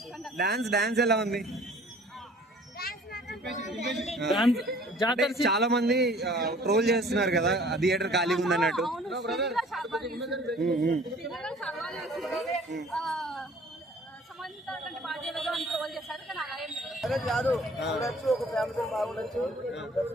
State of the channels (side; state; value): both; normal; correlation 0.51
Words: డాన్స్ ఎలా ఉంది? అంటే చాలా మంది ట్రోల్ చేస్తున్నారు కదా, థియేటర్ ఖాళీగా ఉంది అన్నట్టు. కాదు చూడొచ్చు, ఒక ఫ్యామిలీ బాగుండొచ్చు.